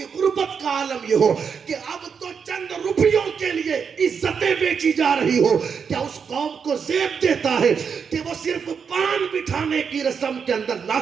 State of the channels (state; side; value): quieter; left; 6.4 dB